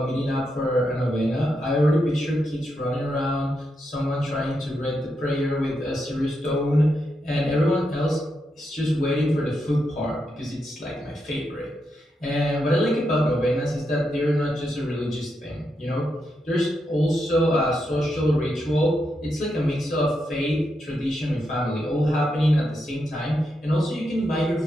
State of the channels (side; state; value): both; normal; correlation 0.83